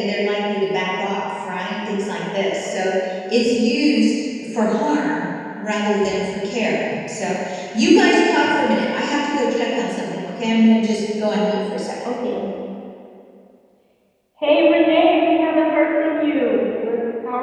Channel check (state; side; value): identical; both; correlation 1.00